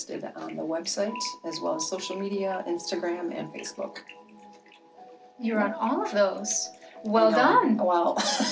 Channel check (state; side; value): identical; both; correlation 1.00